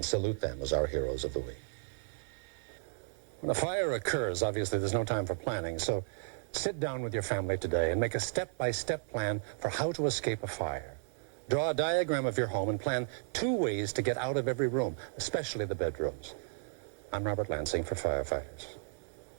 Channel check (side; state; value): left; silent; digital silence